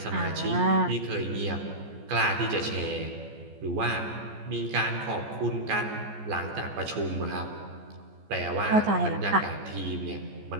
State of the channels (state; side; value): late; left; 14 ms